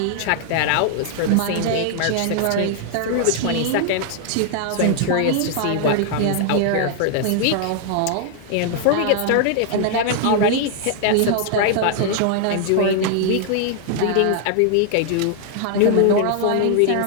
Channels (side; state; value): both; different; correlation 0.00